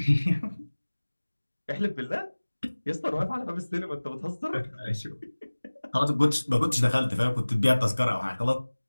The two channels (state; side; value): inverted; both; correlation -1.00